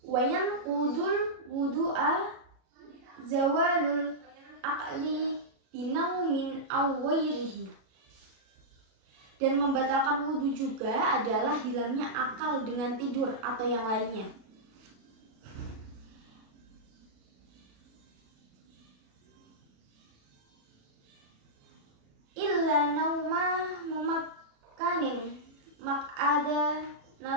Wayan kudul wudu'a zawalul aqli binaumin awwairihi, dan membatalkan wudhu juga adalah hilangnya akal dengan tidur atau yang lainnya. Illa nauma mumakkanin mak'ada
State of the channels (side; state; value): left; late; 37 ms